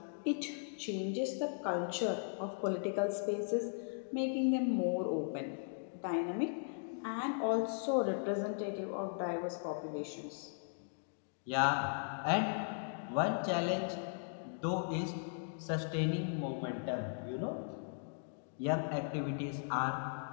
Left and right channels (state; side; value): silent; right; digital silence